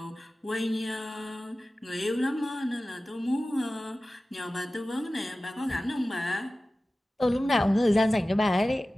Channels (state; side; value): normal; both; correlation 0.96